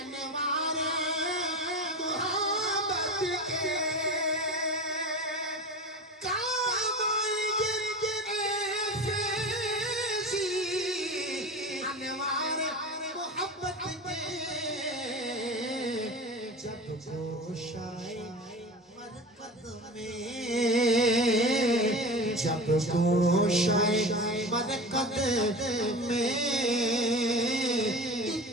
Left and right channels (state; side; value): normal; both; correlation 0.31